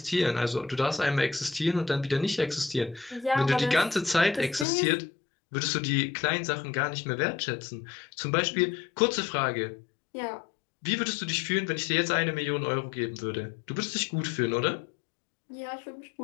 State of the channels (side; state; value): right; drops out; at 4.7 s